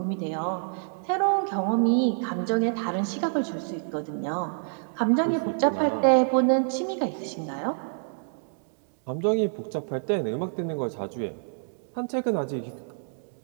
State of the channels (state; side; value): silent; left; digital silence